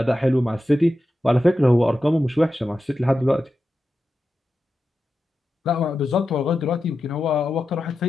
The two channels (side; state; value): both; normal; correlation 0.91